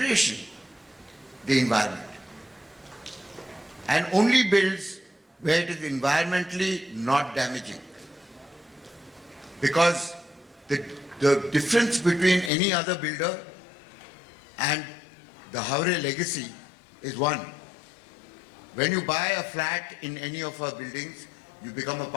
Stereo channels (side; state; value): right; drops out; at 12.5 s